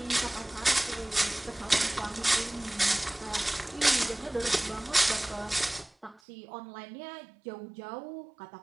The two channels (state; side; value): drops out; left; at 6.2 s